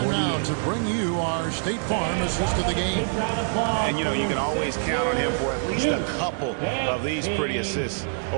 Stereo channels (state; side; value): silent; left; digital silence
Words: now to bring you our State Farm assist of the game. And, you know, you can always count on him for at least a couple of these pretty assists